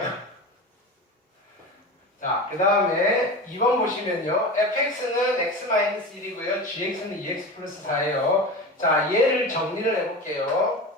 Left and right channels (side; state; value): both; normal; correlation 0.28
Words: 자, 그 다음에 2번 보시면요. fx는 x-1이고요. gx는 2x 플러스 4예요. 자, 얘를 정리를 해볼게요.